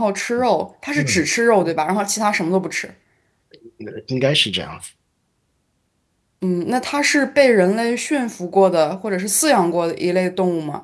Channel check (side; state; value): both; identical; correlation 1.00